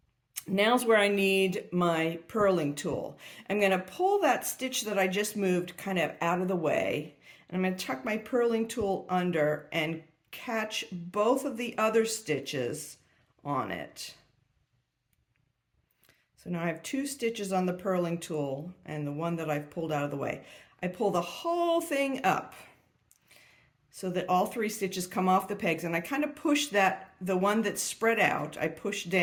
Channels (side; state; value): both; identical; correlation 1.00